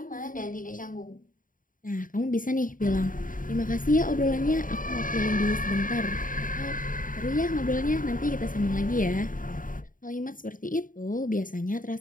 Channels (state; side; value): late; right; 0.39 ms